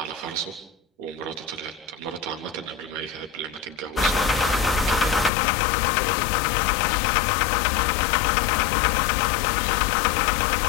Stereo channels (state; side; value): drops out; right; at 5.3 s